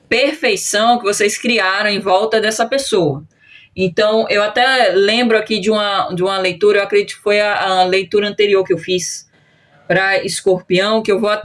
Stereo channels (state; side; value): identical; both; correlation 1.00